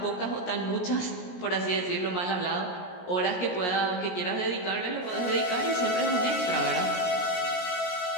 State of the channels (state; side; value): late; right; 17 ms